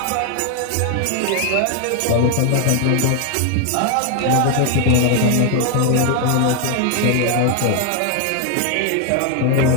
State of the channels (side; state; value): both; different; correlation 0.00